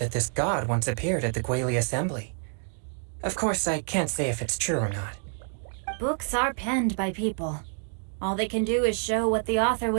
this god once appeared at the Guilde assembly. Of course, I can't say if it's true or not. Books are penned by people. All they can do is show what the author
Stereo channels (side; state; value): left; silent; 60 dB below the other